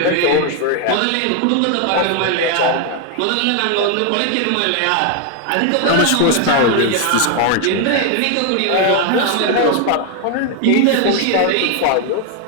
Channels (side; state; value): both; different; correlation 0.01